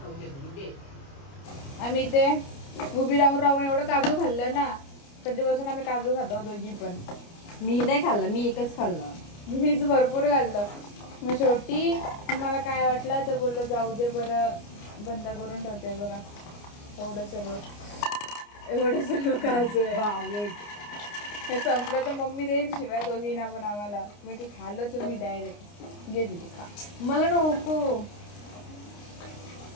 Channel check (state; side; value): late; right; 29 ms